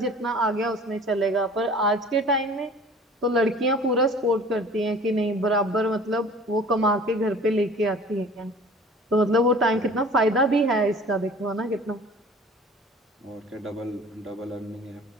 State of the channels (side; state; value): both; normal; correlation 0.46